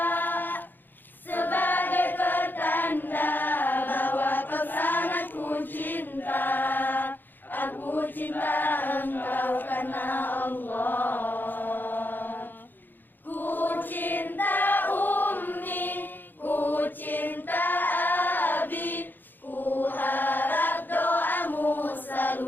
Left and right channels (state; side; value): late; right; 0.091 ms